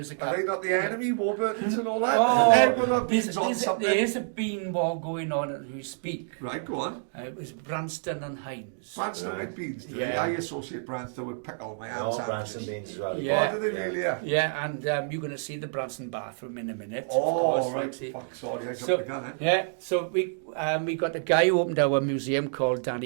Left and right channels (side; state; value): left; silent; digital silence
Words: a... Are they not the enemy, Warburtons and all that? Oh, there's a bean war going on as we speak. Right, go on. It was Branston and Hines. Branston with beans. Yeah. I associate Branston with pickle my hands. Branston beans as well. Yeah. Oh, do they really? Yeah, and you're going to see the Branson bathroom in a minute. Oh, of course, right. Roxy. Fuck, sorry, I jumped So, the gun, so we got a guy who opened our museum called